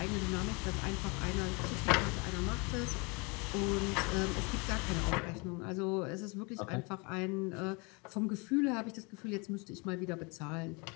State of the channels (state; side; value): quieter; right; 29.7 dB